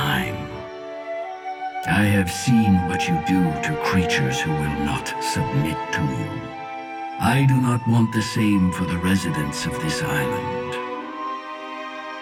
I have seen what you do to creatures who will not submit to you. I do not want the same for the residents of this island.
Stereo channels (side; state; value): both; identical; correlation 1.00